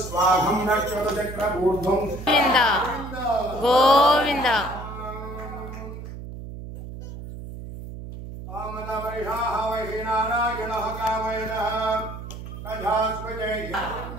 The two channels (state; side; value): noise; right; hum, 10 dB below the sound